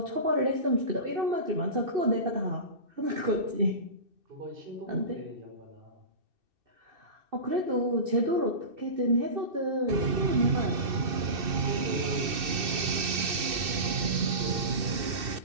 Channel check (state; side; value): late; left; 2.6 ms